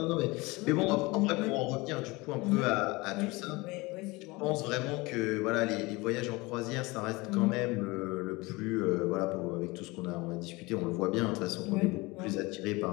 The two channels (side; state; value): right; quieter; 23.4 dB